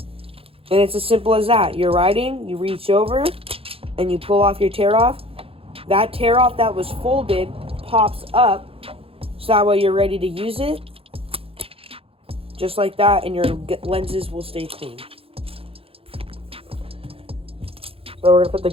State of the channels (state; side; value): late; left; 0.27 ms